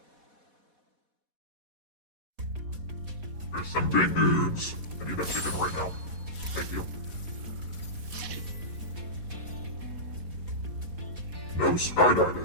There's some big news. I need that chicken right now. Thank you. No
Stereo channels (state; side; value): late; left; 4.1 ms